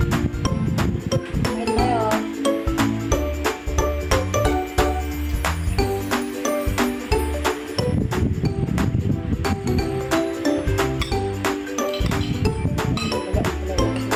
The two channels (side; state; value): both; identical; correlation 1.00